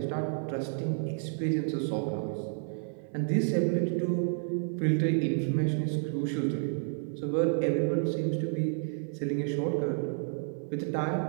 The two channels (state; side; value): silent; left; 57 dB below the other